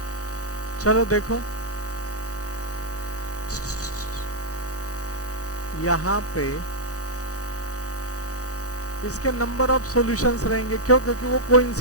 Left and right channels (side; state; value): right; late; 0.66 ms